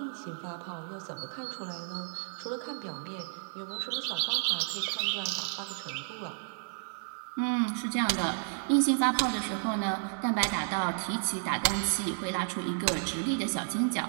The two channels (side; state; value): left; silent; digital silence